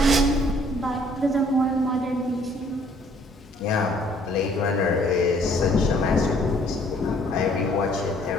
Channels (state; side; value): normal; both; correlation 0.61